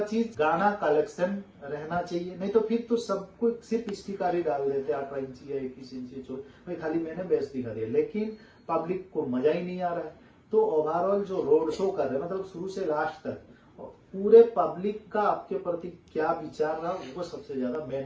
चीज गाना कलेक्शन रहना चाहिए। नहीं तो फिर तो सबको सिर्फ स्टिकारी डाल देते 18 इंची या 21 इंची भाई खाली मैंने बेस दिखा दिया, लेकिन पब्लिक को मजा ही नहीं आ रहा है। तो ओवरऑल जो रोड शो कर रहे हैं मतलब शुरू से लास्ट तक पूरे पब्लिक का आपके प्रति क्या विचार रहा वो सबसे ज्यादा मेन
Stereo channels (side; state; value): both; identical; correlation 1.00